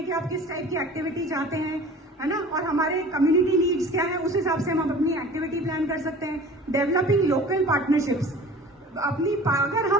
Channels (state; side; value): normal; both; correlation 0.43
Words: कि आप किस टाइप की एक्टिविटी चाहते हैं, है ना। और हमारे कम्युनिटी नीड्स क्या है, उस हिसाब से हम अपनी एक्टिविटी प्लान कर सकते हैं। डेवलपिंग लोकल पार्टनरशिप्स, अपनी अगर